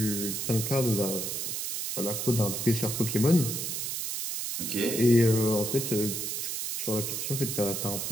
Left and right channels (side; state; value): right; noise; hiss, 3 dB below the sound